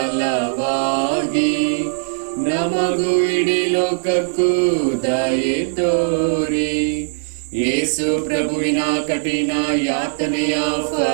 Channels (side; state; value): left; silent; digital silence